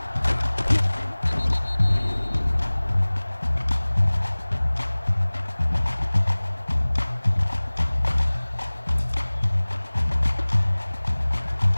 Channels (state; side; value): inverted; both; correlation -1.00